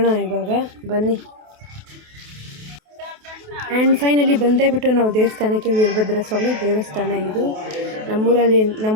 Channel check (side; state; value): left; late; 28 ms